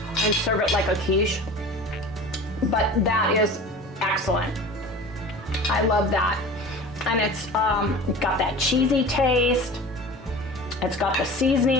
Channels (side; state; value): both; normal; correlation 0.37